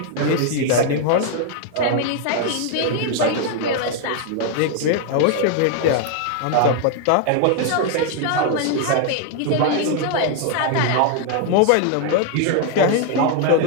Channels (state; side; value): different; both; correlation 0.00